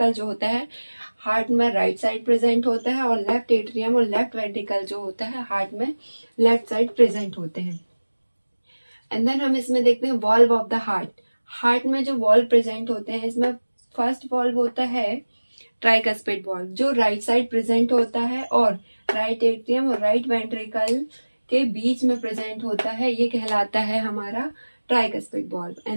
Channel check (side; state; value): both; inverted; correlation -1.00